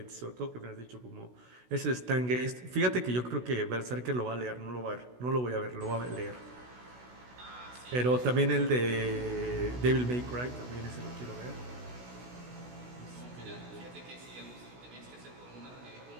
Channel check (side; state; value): left; late; 16 ms